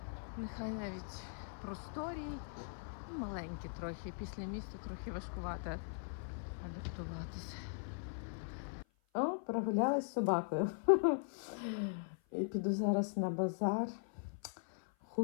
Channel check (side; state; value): right; silent; 51 dB below the other